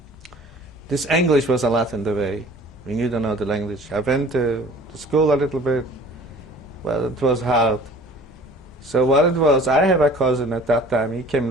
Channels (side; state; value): both; normal; correlation 0.48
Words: this English was a lot in the way. When you don't know the language. I went to school a little bit. Well, it was hard. So what it was, I have a cousin at that time. He came